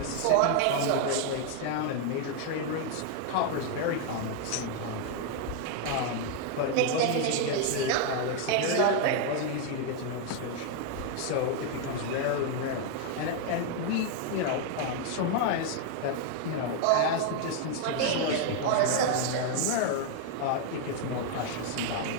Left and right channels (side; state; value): both; different; correlation 0.00